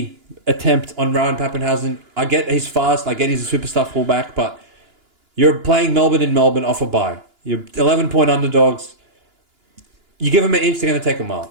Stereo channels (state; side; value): late; left; 2.9 ms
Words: attempt on Ryan Pappenhausen. I get he's fast. I get he's a superstar fullback. But you're playing Melbourne in Melbourne off a bye. You're 11-point underdogs. You give them an inch, they're going to take a mile.